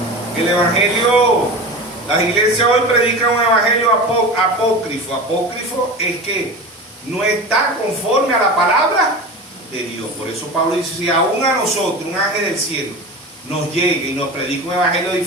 El evangelio, Las iglesias hoy predican un evangelio apócrifo. Apócrifo es que no está conforme a la palabra de Dios. Por eso Pablo dice, si aún a nosotros, un ángel del cielo, nos llegue y nos predica un evangelio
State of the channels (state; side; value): normal; both; correlation 0.30